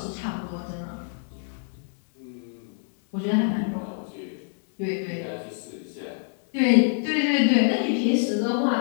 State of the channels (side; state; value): right; silent; digital silence